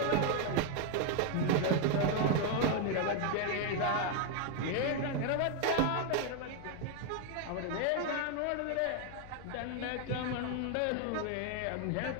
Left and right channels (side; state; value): both; different; correlation 0.01